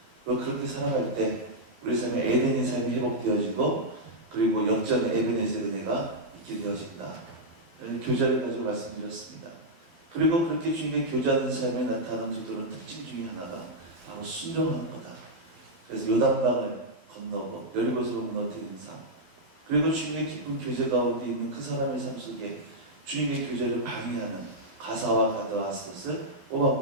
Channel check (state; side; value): late; left; 12 ms